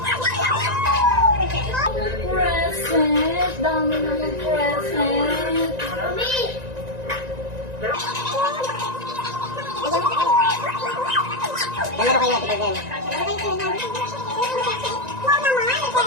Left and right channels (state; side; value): late; left; 1.9 ms